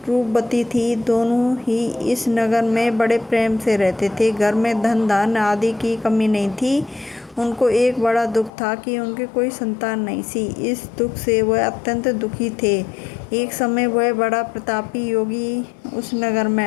रूपवती थी। दोनों ही इस नगर में बड़े प्रेम से रहते थे। घर में धन धान्य आदि की कमी नहीं थी। उनको एक बड़ा दुख था कि उनके कोई संतान नहीं थी। इस दुख से वह अत्यंत दुखी थे। एक समय वह बड़ा प्रतापी योगी उस नगर में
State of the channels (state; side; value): drops out; right; at 8.5 s